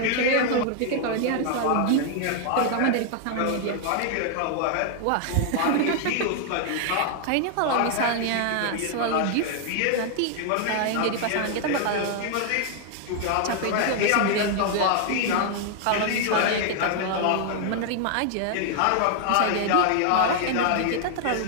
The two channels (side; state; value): both; different; correlation 0.00